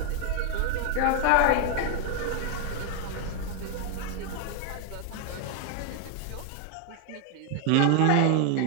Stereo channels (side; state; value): both; different; correlation 0.00